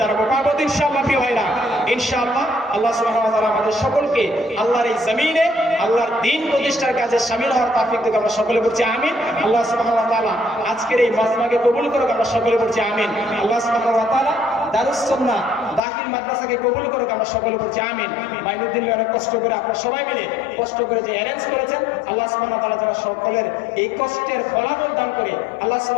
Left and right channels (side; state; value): right; drops out; at 15.8 s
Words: দাঁড়াবো, পারবো ইনশাআল্লাহ প্রিয় ভাইরা। ইনশাআল্লাহ আল্লাহ সুবহানাহু ওয়া তাআলা আমাদের সকলকে আল্লাহর এই জমিনে আল্লাহর দ্বীন প্রতিষ্ঠার কাজে শামিল হওয়ার তৌফিক দিক। আমরা সকলে বলছি আমিন। আল্লাহ সুবহানাহু ওয়া তাআলা আজকের এই মাজমাকে কবুল করুক। আমরা সকলে বলছি আমিন। আল্লাহ সুবহানাহু ওয়া তাআলা দারুস সুন্নাহ দাখিল মাদ্রাসাকে কবুল করুক। আমরা সকলে বলছি আমিন। মাইনুদ্দিন ভাই অনেক কষ্ট করে, আপনারা সবাই মিলে কষ্ট করে যে অ্যারেঞ্জ করেছেন, আল্লাহ সুবহানাহু ওয়া তাআলা যেন সকলের এই কষ্টের ফলাফল দান করে, আল্লাহ